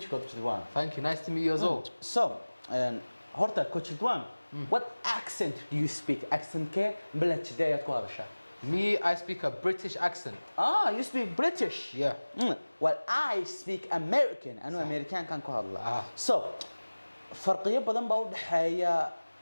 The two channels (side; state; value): both; inverted; correlation -1.00